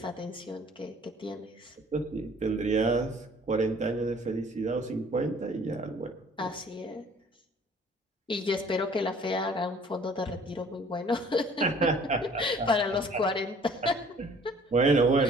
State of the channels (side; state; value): both; normal; correlation 0.54